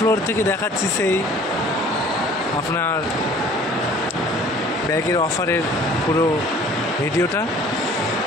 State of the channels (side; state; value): both; normal; correlation 0.51